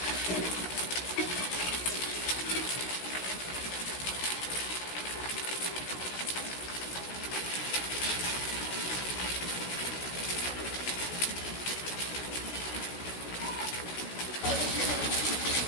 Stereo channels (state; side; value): late; right; 16 ms